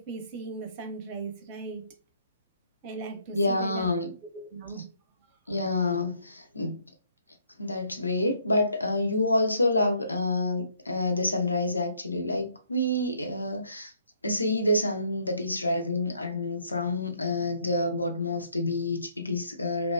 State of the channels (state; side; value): inverted; both; correlation -0.67